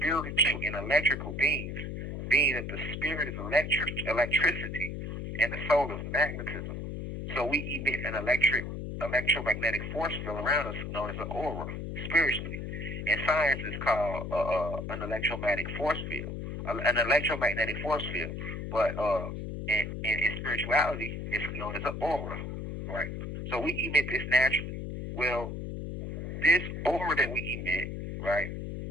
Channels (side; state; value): left; noise; hum, 6 dB below the sound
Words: and electrical beings, being that the spirit is electricity and the soul is magnetism. So we emit an electromagnetic force field around us known as an aura, spiritually. And science is called an electromagnetic force field, an electromagnetic force field. But in spirituality, it's known as an aura, right? So we emit this naturally. Well, this aura that we emit, right,